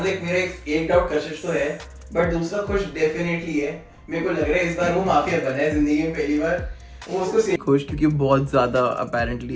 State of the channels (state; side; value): identical; both; correlation 1.00